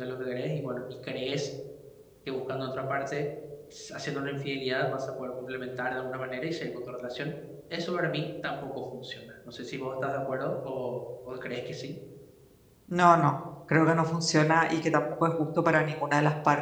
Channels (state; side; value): identical; both; correlation 1.00